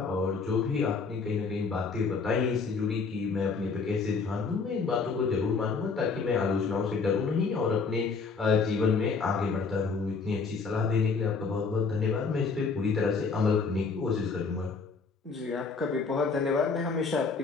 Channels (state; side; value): quieter; right; 4.8 dB